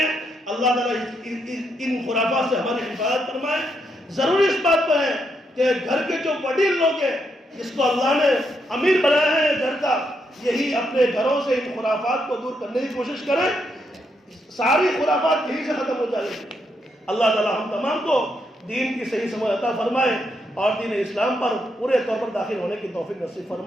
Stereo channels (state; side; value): normal; both; correlation 0.79